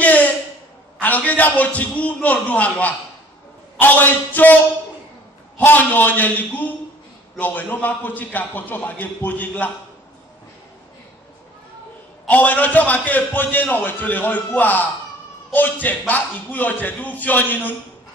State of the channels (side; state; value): both; normal; correlation 0.53